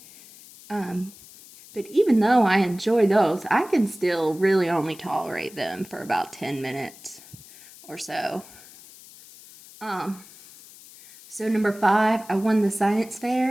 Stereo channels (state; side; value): noise; left; hiss, 21 dB below the sound